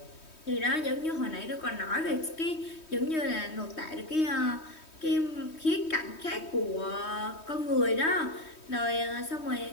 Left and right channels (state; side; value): late; right; 3.2 ms